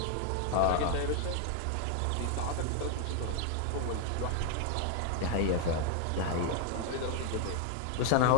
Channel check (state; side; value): different; both; correlation 0.00